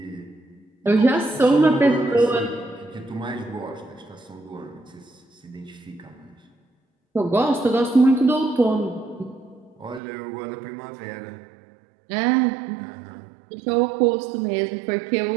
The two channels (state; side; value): drops out; left; at 10.0 s